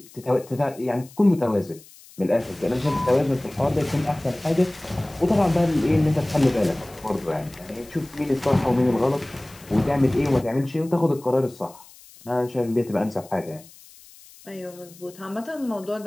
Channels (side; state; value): left; noise; hiss, 23 dB below the sound